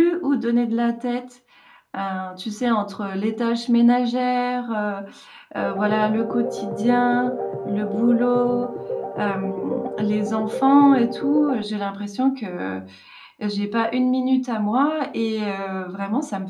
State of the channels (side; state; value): both; identical; correlation 1.00